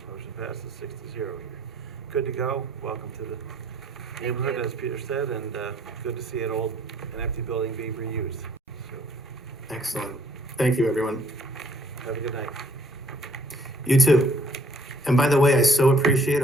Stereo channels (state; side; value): normal; both; correlation 0.62